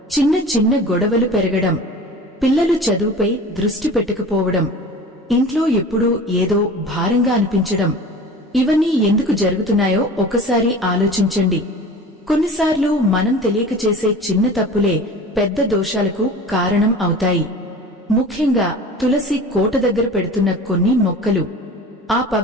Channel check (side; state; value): both; normal; correlation 0.39